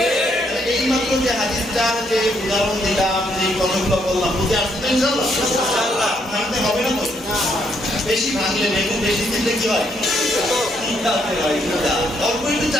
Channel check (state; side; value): normal; both; correlation 0.73